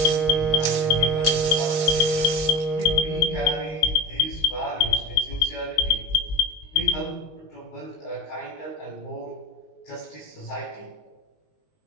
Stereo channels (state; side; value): late; right; 19 ms